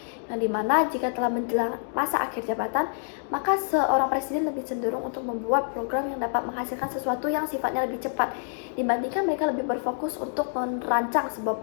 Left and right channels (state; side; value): silent; right; digital silence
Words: yang dimana jika telah menjelang masa akhir jabatan, maka seorang presiden lebih cenderung untuk membuat program yang dapat menghasilkan sesuatu yang sifatnya lebih cepat, dibandingkan mereka lebih berfokus untuk merancang sebuah